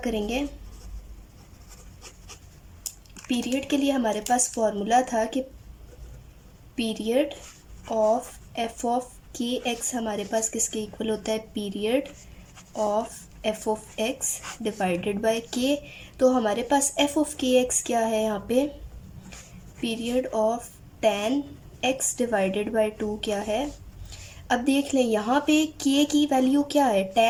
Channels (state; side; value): identical; both; correlation 1.00